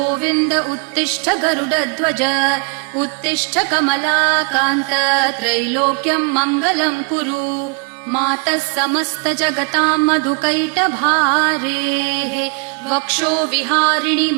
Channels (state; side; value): quieter; left; 37.0 dB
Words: उत्तिष्ठ गरुडध्वज उत्तिष्ठ कमलाकान्त त्रैलोक्यम् मङ्गलम् कुरु मातः समस्त जगताम् मधुकैटभारेः वक्षो विहारिणि